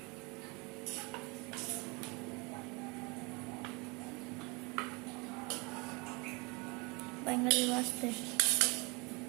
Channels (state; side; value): quieter; left; 28.6 dB